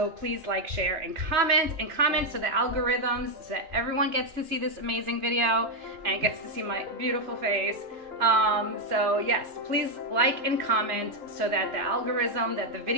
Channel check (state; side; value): late; left; 3.0 ms